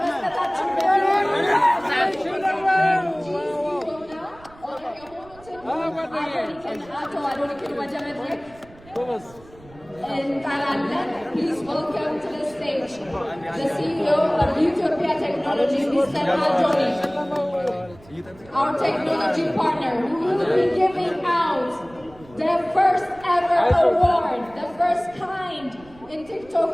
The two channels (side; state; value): right; noise; rumble, 24 dB below the sound